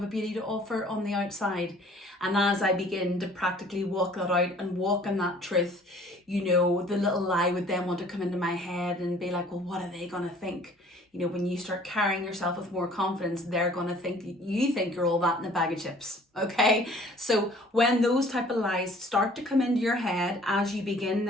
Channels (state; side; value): normal; both; correlation 0.53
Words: a beauty to offer on the outside. And as I begin to practically walk that out and walk in that truth, you know, the little lie would then want to come into my head and be like, well, what are they going to think? You know, when you start carrying yourself with more confidence, they're going to think you think you're all that in a bag of chips. Okay. So when those type of lies start to come into your head as you begin